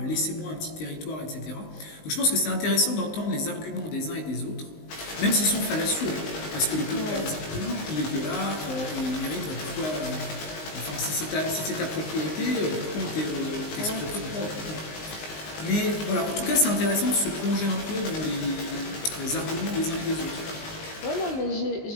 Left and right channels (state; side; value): late; right; 19 ms